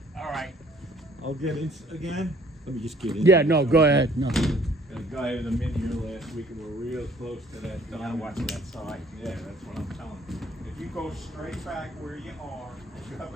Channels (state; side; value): normal; both; correlation 0.58